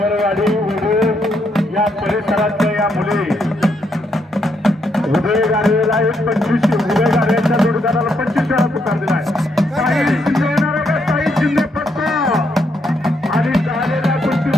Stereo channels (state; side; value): normal; both; correlation 0.76